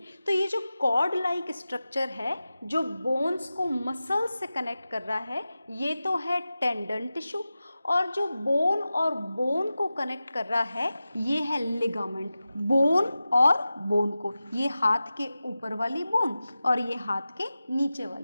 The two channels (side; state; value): both; inverted; correlation -0.94